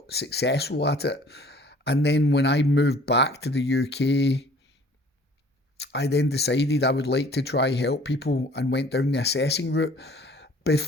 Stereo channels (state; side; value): normal; both; correlation 0.53